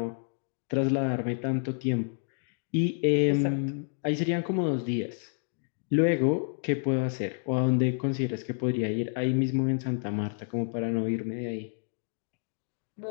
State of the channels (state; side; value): silent; right; 58 dB below the other